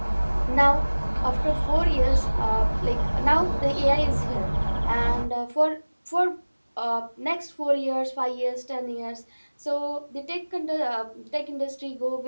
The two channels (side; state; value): both; inverted; correlation -1.00